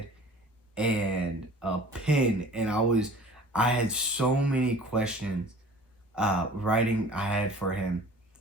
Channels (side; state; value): both; normal; correlation 0.46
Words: and a pen, and I had so many questions writing I had for him,